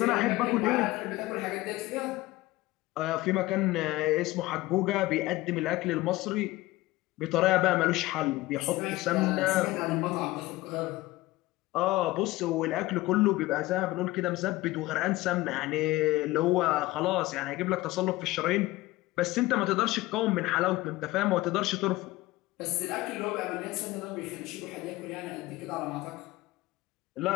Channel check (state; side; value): quieter; right; 18.6 dB